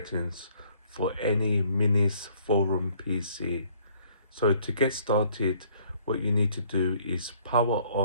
for any Minisforum PC. So to get started, what you need to do is power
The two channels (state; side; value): inverted; both; correlation -0.61